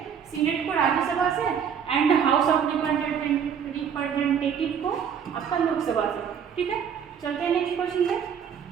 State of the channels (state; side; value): quieter; left; 7.7 dB